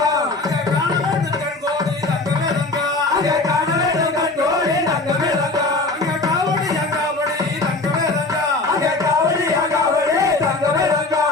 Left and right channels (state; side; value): quieter; right; 3.2 dB